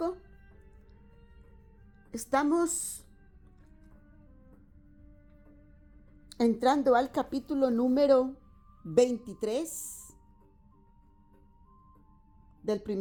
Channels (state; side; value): identical; both; correlation 1.00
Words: Estamos entrando al capítulo número 23 del